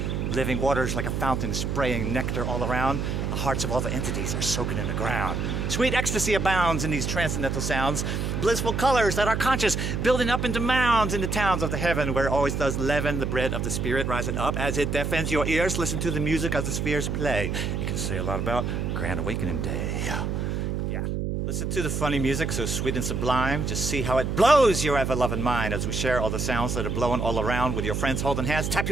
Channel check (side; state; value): right; noise; hum, 1 dB below the sound